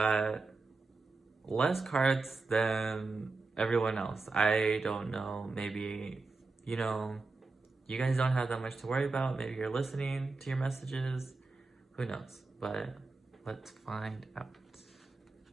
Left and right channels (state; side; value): quieter; left; 3.8 dB